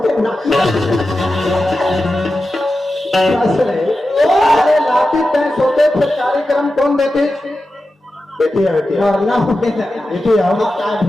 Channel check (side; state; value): both; normal; correlation 0.92